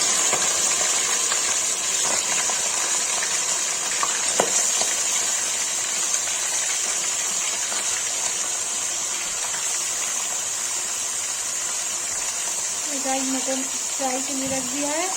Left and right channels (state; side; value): identical; both; correlation 1.00